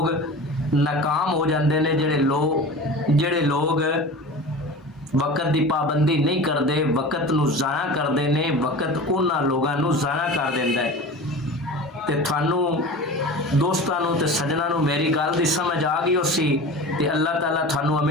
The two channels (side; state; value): both; normal; correlation 0.34